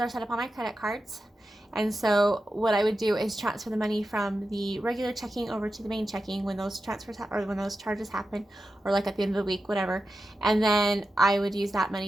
set up on my credit cards. And so what I would do is transfer the money from the regular checking over to the main checking when those transfers or when those charges happen, or like at the end of the week, whatever. And then I would use that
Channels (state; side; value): normal; both; correlation 0.91